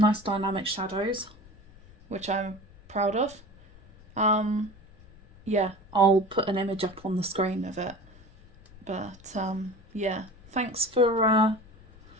nice dynamic shadows, which I'm proud of. Yeah, I'll put an image up on the screen of it. But, yeah, thanks for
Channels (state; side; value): noise; left; rumble, 24 dB below the sound